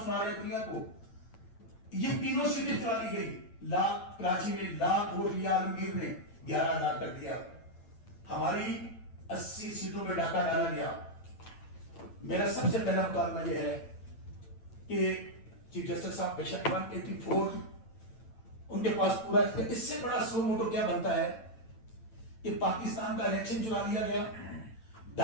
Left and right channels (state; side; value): late; right; 8.9 ms